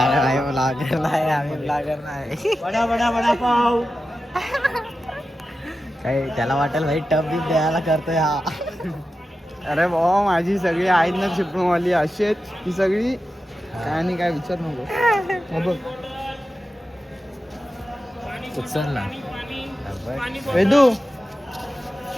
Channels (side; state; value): both; normal; correlation 0.92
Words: नाही आम्ही ब्लॉगर नाही. बडा बडा बडा पाव. काही त्याला वाटेल भाई टप बी द्यायला करतोय हा. अरे भाऊ माझी सगळी आहेत ना चिपळूणवाली अशी आहेत ही सगळी. काय नाही काय विचार नको. बघ उचलला वेदू